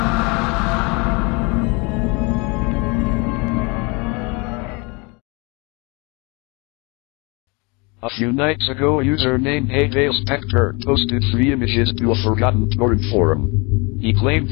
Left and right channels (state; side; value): quieter; right; 29.2 dB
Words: A few nights ago, a user named Spectre posted 3 images to a forgotten torrent forum. He claimed